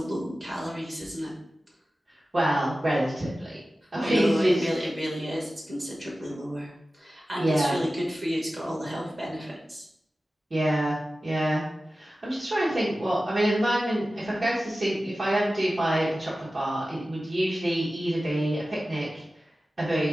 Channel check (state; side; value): normal; both; correlation 0.95